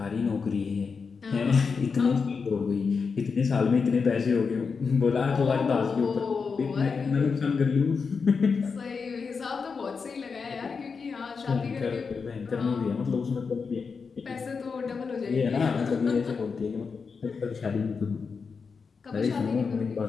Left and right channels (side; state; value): right; quieter; 5.3 dB